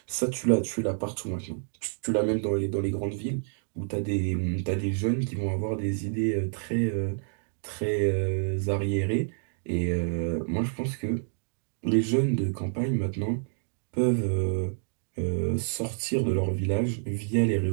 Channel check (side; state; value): left; silent; digital silence